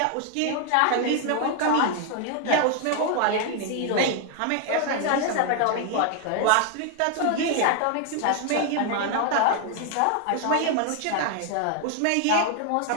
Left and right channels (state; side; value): different; both; correlation 0.00